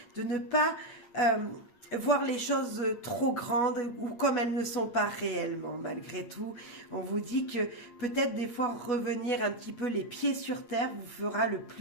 de ne pas voir les choses trop grandes ou comme elles ne sont pas réellement. Malgré tout, on vous dit que peut-être des fois revenir un petit peu les pieds sur terre vous fera le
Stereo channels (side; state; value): right; late; 8.7 ms